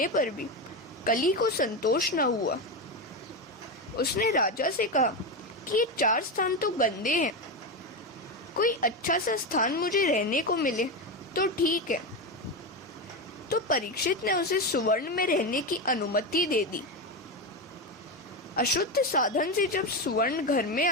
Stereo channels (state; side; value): normal; both; correlation 0.14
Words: पर भी कली को संतोष न हुआ। उसने राजा से कहा कि ये 4 स्थान तो गंदे हैं, कोई अच्छा सा स्थान मुझे रहने को मिले तो ठीक है। तो परीक्षित ने उसे सुवर्ण में रहने की अनुमति दे दी। अशुद्ध साधन से जब सुवर्ण घर में